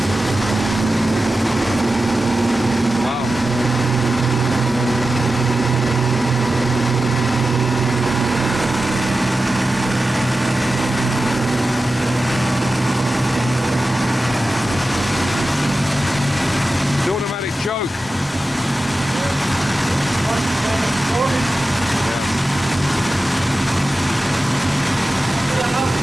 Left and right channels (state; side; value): normal; both; correlation 0.93